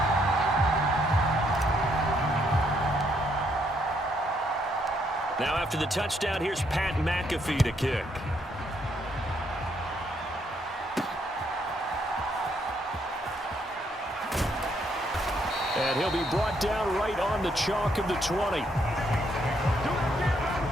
Now after the touchdown, here's Pat McAfee to kick. And he'll be brought down right on the chalk of the 20.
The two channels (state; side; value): normal; both; correlation 0.72